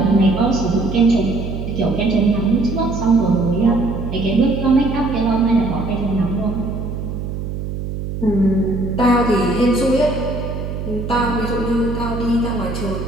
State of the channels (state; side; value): noise; right; hum, 6 dB below the sound